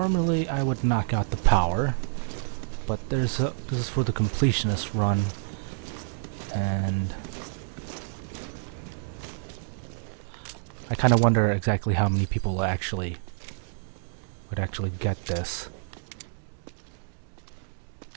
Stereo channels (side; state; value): left; silent; digital silence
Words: I would knock out the power, but this is for the completionist run, and I kind of wonder exactly how many people would actually get this.